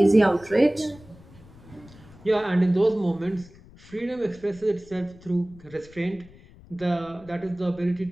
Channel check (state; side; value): noise; left; rumble, 23 dB below the sound